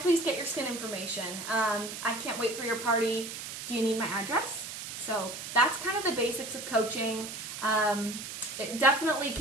get your skin information? I can't wait for your party. Do you need my address? So that's kind of the basics of coaching. It definitely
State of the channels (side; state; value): right; noise; hiss, 8 dB below the sound